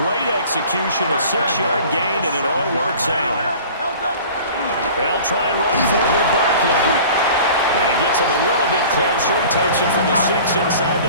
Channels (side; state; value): both; inverted; correlation -0.43